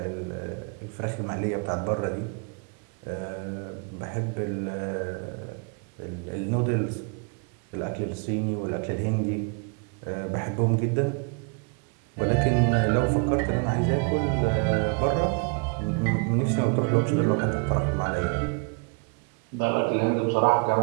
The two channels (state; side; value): quieter; left; 35.2 dB